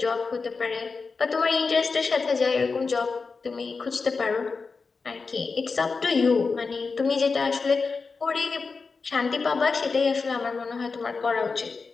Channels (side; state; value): right; quieter; 4.6 dB